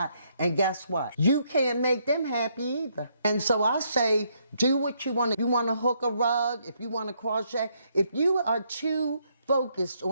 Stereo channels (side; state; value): both; inverted; correlation -0.73